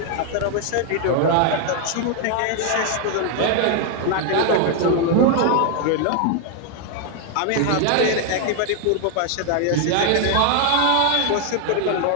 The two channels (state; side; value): different; both; correlation 0.00